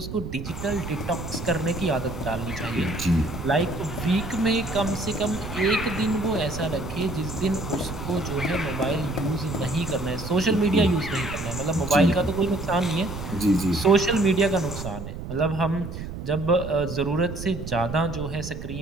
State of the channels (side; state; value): right; noise; rumble, 8 dB below the sound